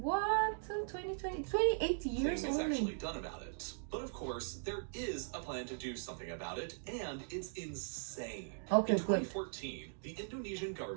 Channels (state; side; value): silent; left; digital silence